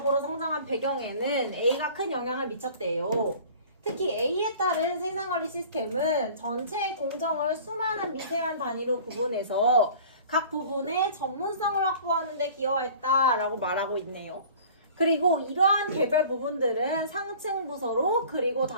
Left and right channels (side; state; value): both; inverted; correlation -0.46